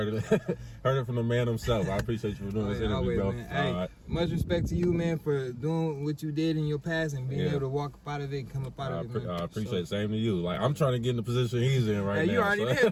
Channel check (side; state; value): both; identical; correlation 1.00